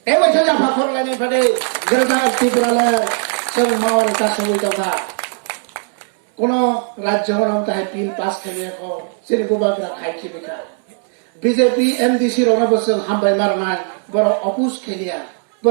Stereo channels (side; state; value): left; silent; 56 dB below the other